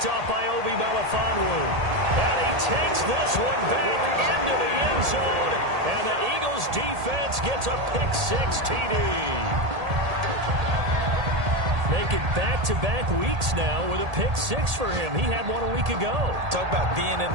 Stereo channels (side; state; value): left; late; 1.8 ms